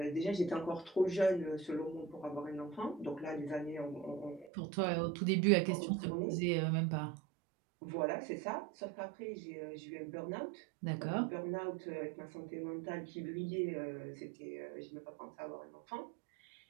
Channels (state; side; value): drops out; left; at 4.5 s